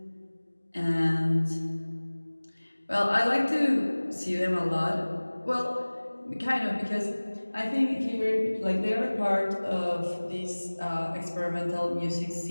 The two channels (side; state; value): both; inverted; correlation -1.00